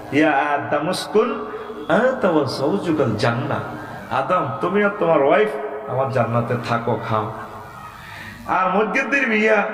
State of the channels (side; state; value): both; identical; correlation 1.00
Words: ইয়া আদম উসকুন আনতা ওয়া যাওজুকাল জান্নাহ, আদম তুমি আর তোমার ওয়াইফ আমার জান্নাতে থাকো খাও। আর মসজিদের বিয়া